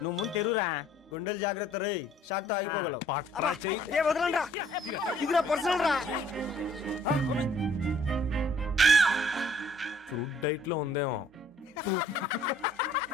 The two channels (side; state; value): both; normal; correlation 0.59